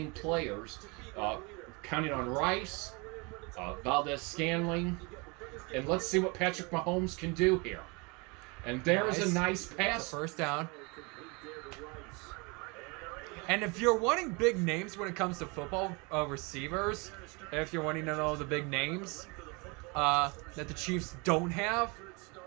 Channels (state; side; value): quieter; left; 29.0 dB